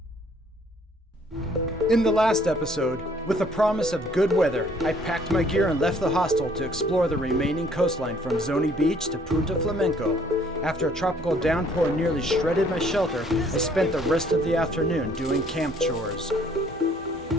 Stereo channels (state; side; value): normal; both; correlation 0.61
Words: In the last episode, with the promise of good weather, I packed my gear and left the hostel to explore the remaining coastline from Zoni Beach to Punta Flamenco. After a tropical downpour nearly shredded my shelter, I spent the rest of the afternoon doing camp chores.